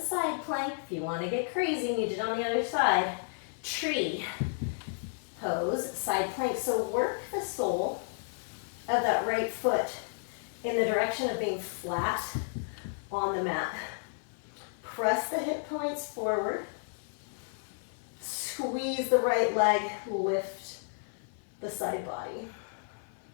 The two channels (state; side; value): silent; right; 56 dB below the other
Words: side plank. If you want to get crazy and you did on the other side, tree pose, side plank. So work the sole of that right foot in the direction of being flat on the mat. Press the hip points forward. Squeeze the right leg, lift the side body.